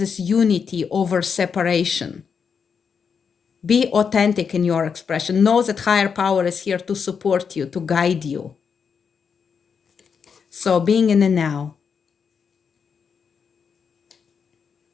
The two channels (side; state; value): right; quieter; 6.3 dB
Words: unity over separation. Be authentic in your expression. Know that higher power is here to support you, to guide you. So being in the now.